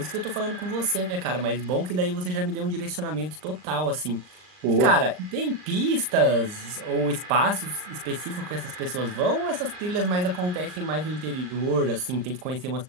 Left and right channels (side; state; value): left; late; 39 ms